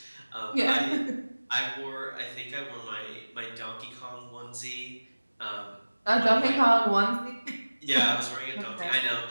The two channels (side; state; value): both; inverted; correlation -1.00